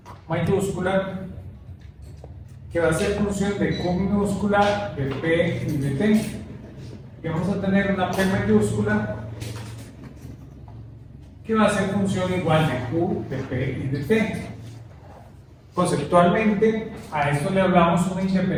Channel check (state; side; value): identical; both; correlation 1.00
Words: mayúscula, que va a ser función de Q minúscula, de P y de T. Y vamos a tener una P mayúscula que va a ser función igual de Q, de P y de T. Conceptualmente, a esto le hablamos una